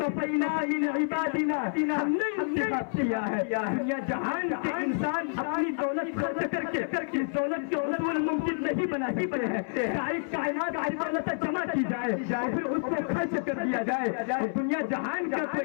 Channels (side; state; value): right; silent; 59 dB below the other